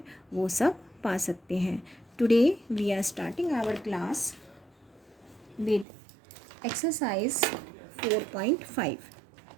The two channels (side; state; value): left; drops out; at 5.9 s